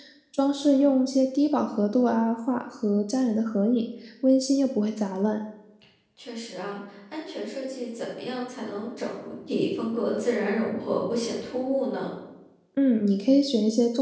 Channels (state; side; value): identical; both; correlation 1.00